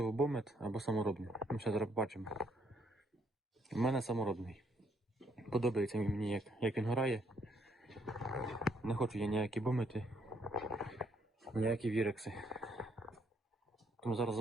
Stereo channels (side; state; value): both; normal; correlation 0.70